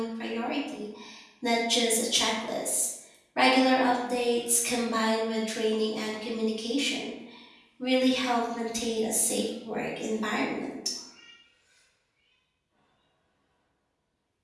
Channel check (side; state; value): both; identical; correlation 1.00